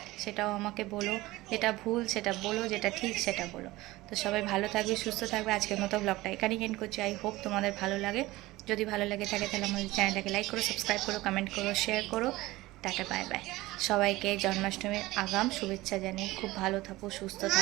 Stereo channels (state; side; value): quieter; left; 18.8 dB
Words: সেটাও আমাকে বলো, যেটা ভুল সেটা বলো, যেটা ঠিক সেটা বলো। তো সবাই ভালো থাকবে, সুস্থ থাকবে। আজকের মতো ব্লগটা এখানেই এন্ড করছি। আই হোপ তোমাদের ভালো লাগে। যদি ভালো লাগে থাকে তাহলে আমাদের চ্যানেলটাকে লাইক করো, সাবস্ক্রাইব করো, কমেন্ট করো, শেয়ার করো। Tata, bye bye. সবাইকে জন্মাষ্টমীর আগাম শুভেচ্ছা জানিয়ে খুব ভালো থাকো, সুস্থ